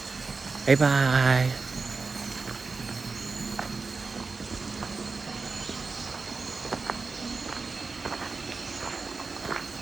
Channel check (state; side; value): quieter; left; 4.3 dB